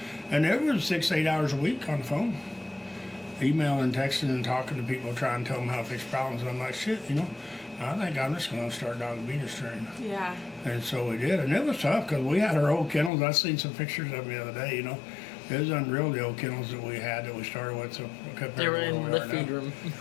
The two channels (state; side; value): drops out; right; at 13.1 s